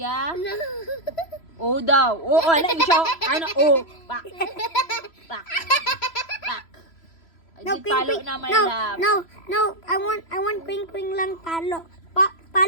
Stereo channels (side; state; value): right; late; 3.0 ms